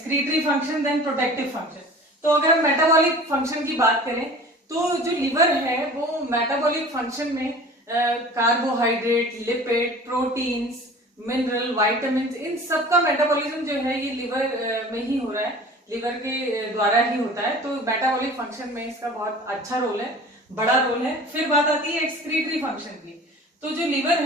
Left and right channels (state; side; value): normal; both; correlation 0.42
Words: function, then protective function. तो अगर हम मेटाबॉलिक फंक्शन की बात करें तो जो लीवर है वो मेटाबॉलिक फंक्शन में carbohydrate, lipid, proteins, mineral, vitamin, इन सबका मेटाबॉलिज्म जो है ये लीवर में ही हो रहा है, लीवर के द्वारा ही होता है। तो मेटाबॉलिक फंक्शन में इसका बहुत अच्छा रोल है, बड़ा रोल है। फिर बात आती है एक्सक्रीटरी फंक्शन की। तो जो लीवर